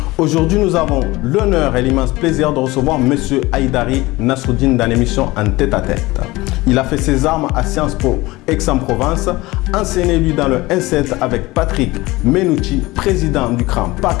Aujourd'hui, nous avons l'honneur et l'immense plaisir de recevoir M. Haïdari Nasruddin dans l'émission En tête-à-tête. Il a fait ses armes à Sciences Po Aix-en-Provence, enseigné lui dans le N7 avec Patrick Menouchi, président du CRAN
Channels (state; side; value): quieter; right; 20.4 dB